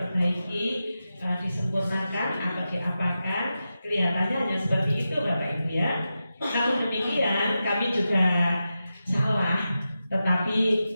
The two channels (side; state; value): both; inverted; correlation -0.91